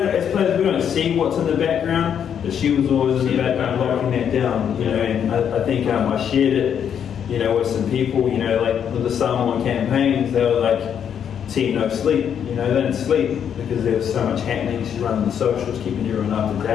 players, we don't see what's in the background, but she was always in the background locking that down, you know. And I think I shared it, you know, with some people, you know, like with the Samoan campaigns. They were like, team no sleep, you know, they didn't sleep because there was so much happening. She's running the socials, keeping everyone up to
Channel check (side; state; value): right; quieter; 8.4 dB